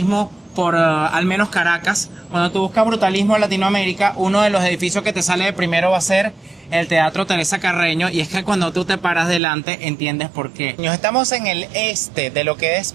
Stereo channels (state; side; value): drops out; left; at 9.4 s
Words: por al menos Caracas. Cuando tú buscas brutalismo en Latinoamérica, uno de los edificios que te sale de primero va a ser el Teatro Teresa Carreño, y es que cuando tú te paras delante entiendes por qué. Nos estamos en el este de lo que es